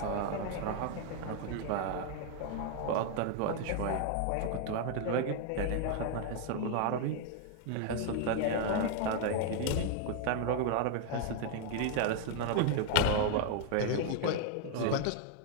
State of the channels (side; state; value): both; different; correlation 0.00